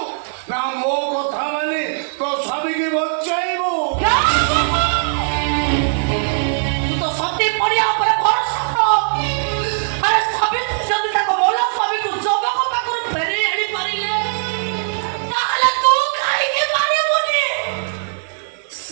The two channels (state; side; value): silent; left; digital silence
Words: না মো কথা মানে তো স্বামীকে বঞ্চাইবো? তুই তো সত্যি পড়িয়া উপরে ভরসা কর। আরে স্বামী যদি তাকে বলো স্বামীকে যুবক পাখରୁ ফেরি আনি পারিলে তাহলে তু কাହିଁକି ପାରିବୁନି?